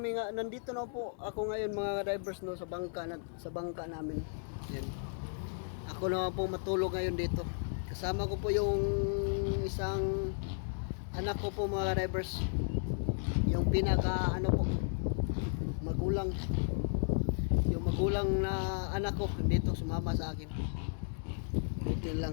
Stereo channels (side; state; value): right; silent; digital silence